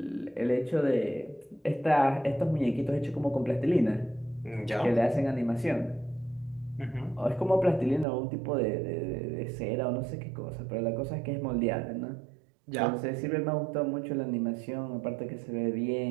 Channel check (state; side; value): drops out; left; at 8.1 s